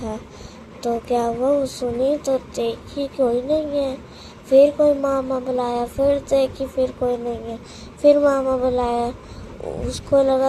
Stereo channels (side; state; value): both; identical; correlation 1.00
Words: तो क्या हुआ, वो सुनी तो देखी कोई नहीं है। फिर कोई मामा बुलाया, फिर देखी फिर कोई नहीं है। फिर मामा बुलाया, उसको